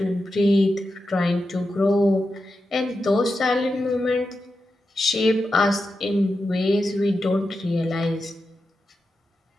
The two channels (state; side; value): normal; both; correlation 0.90